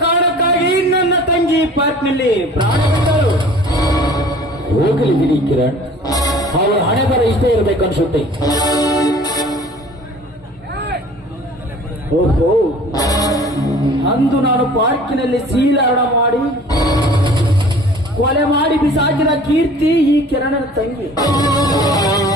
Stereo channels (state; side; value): normal; both; correlation 0.48